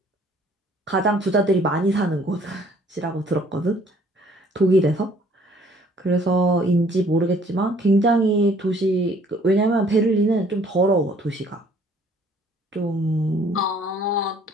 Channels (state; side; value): normal; both; correlation 0.58